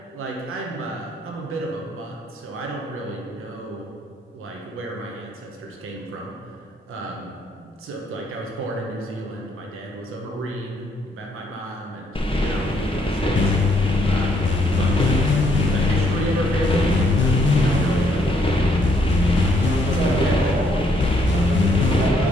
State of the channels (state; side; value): normal; both; correlation 0.71